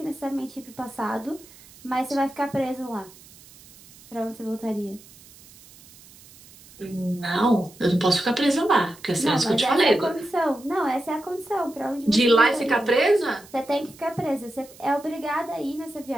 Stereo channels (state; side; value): noise; right; hiss, 23 dB below the sound